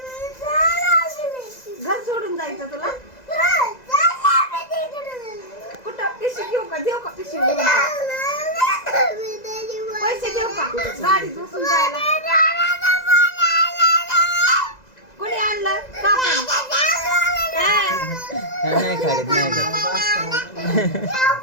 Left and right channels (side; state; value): right; late; 2.0 ms